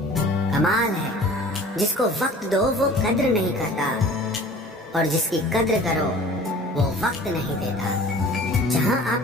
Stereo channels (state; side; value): normal; both; correlation 0.45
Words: कमाल है जिसको वक्त दो वो कद्र नहीं करता, और जिसकी कद्र करो वो वक्त नहीं देता। जहाँ